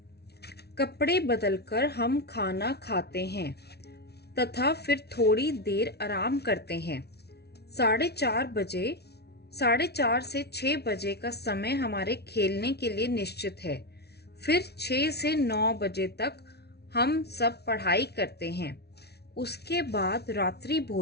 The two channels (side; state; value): right; late; 0.48 ms